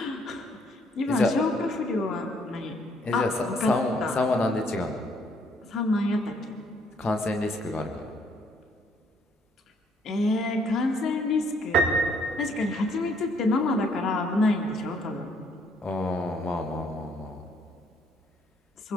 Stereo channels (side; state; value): both; normal; correlation 0.67